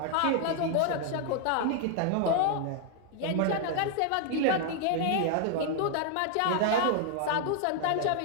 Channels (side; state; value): both; different; correlation 0.00